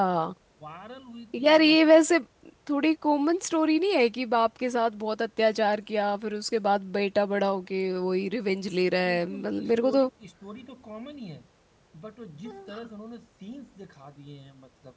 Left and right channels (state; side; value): identical; both; correlation 1.00